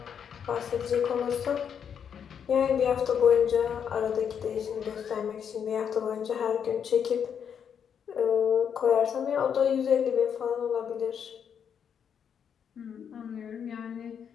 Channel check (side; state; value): right; quieter; 7.8 dB